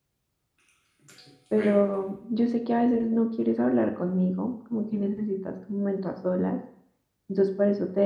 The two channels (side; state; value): both; identical; correlation 1.00